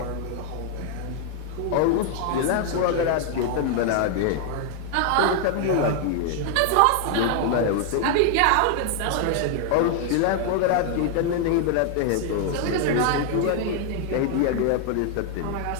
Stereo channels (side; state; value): both; different; correlation 0.00